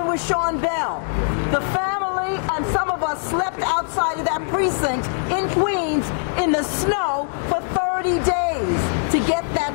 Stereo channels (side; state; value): right; silent; digital silence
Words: with Sean Bell? The family and some of us slept outside of that precinct in Queens in the snow for 30 days to get